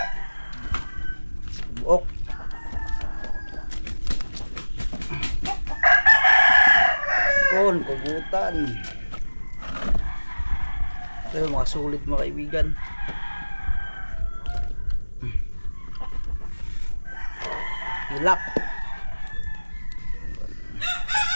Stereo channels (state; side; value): inverted; both; correlation -1.00